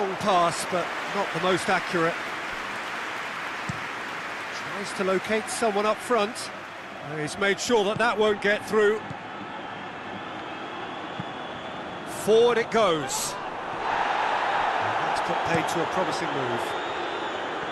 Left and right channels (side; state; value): both; identical; correlation 1.00